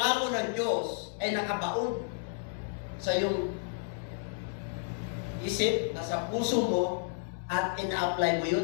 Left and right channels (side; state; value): right; silent; digital silence